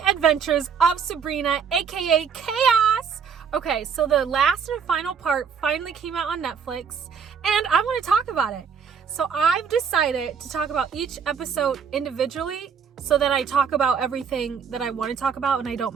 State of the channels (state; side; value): quieter; left; 6.7 dB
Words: adventures of Sabrina, aka Chaos. Okay, so the last and final part finally came out on Netflix, and I want to talk about it. So I've decided to talk about each episode individually so that I talk about everything that I want to talk about and I